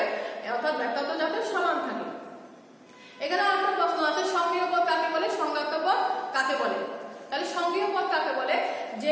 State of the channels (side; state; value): both; identical; correlation 1.00